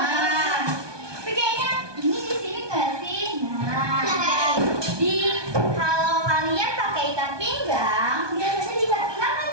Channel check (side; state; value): left; late; 1.2 ms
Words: Tapi kayaknya ini di sini nggak sih? Nah, di kalau kalian pakai ikat pinggang, biasanya di ikat pinggang kan